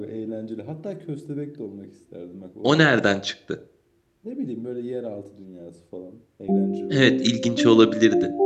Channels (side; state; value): both; identical; correlation 1.00